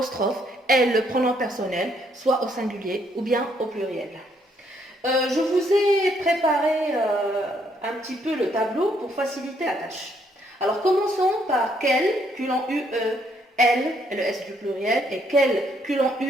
L, le pronom personnel, soit au singulier ou bien au pluriel. Je vous ai préparé un petit peu le tableau pour faciliter la tâche. Alors commençons par quel, culon U, E, L, et le S du pluriel, et quel, culon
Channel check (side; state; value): both; normal; correlation 0.70